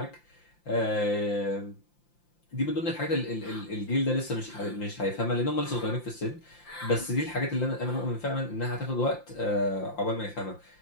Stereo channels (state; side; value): late; right; 5.8 ms